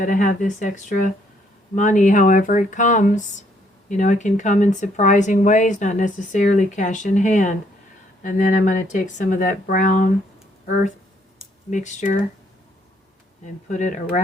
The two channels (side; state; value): both; normal; correlation 0.68